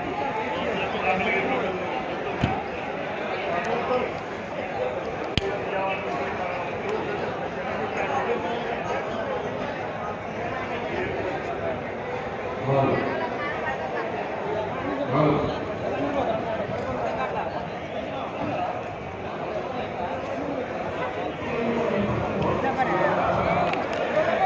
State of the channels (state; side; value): identical; both; correlation 1.00